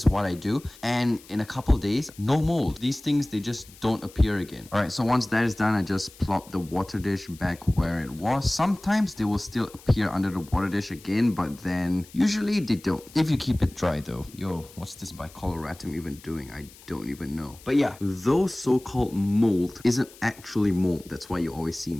what I do, and in a couple days, no mold. These things, they just don't appear again. All right, so once that is done, I just plop the water dish back where it was. Sometimes they will still appear under the water dish again, but then usually they don't, if you keep it dry though. Yo, what's this bicoloratum even doing? I don't even know. But yeah, those so-called mold isn't actually mold. That's why you always see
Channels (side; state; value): left; noise; hiss, 22 dB below the sound